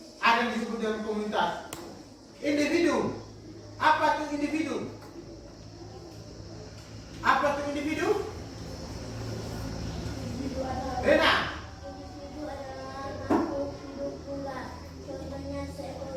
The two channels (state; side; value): identical; both; correlation 1.00